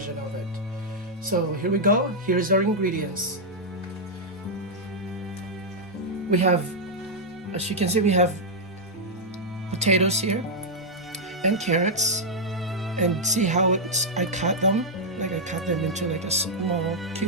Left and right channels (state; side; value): normal; both; correlation -0.04